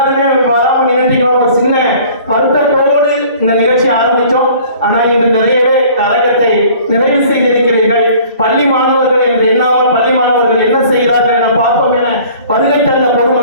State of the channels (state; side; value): inverted; both; correlation -0.50